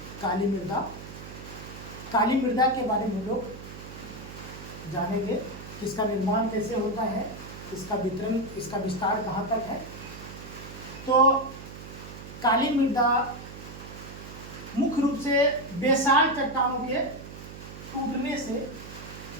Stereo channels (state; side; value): noise; right; hum, 13 dB below the sound